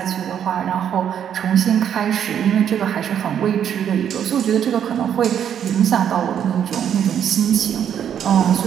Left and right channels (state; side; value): quieter; left; 9.1 dB